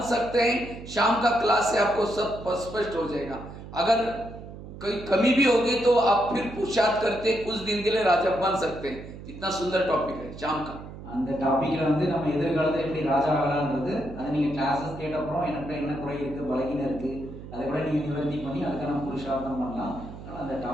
सकते हैं, शाम का क्लास से आपको सब स्पष्ट हो जाएगा। अगर कोई कमी भी होगी तो आप फिर पुरुषार्थ करते कुछ दिन के लिए राजा बन सकते हैं। इतना सुंदर टॉपिक है शाम का। அந்த டாபிக்ல வந்து நம்ம எதிர்காலத்துல எப்படி ராஜா ஆகலாம்ன்றது அதை நீங்க கிளாसेस கேட்ட அப்புறம் எனக்கு என்ன குறை இருக்கு, பலகீனம் இருக்கு, அதை கூட நீங்க நிவர்த்தி பண்ணி அதுக்கான புருஷார்த்தம் பண்ணலாம். அந்த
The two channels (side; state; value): right; noise; hum, 13 dB below the sound